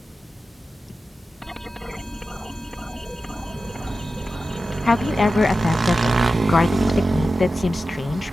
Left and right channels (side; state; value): both; normal; correlation 0.93